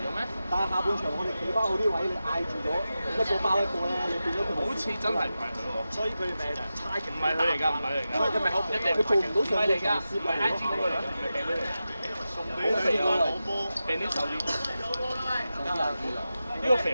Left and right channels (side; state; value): both; inverted; correlation -0.92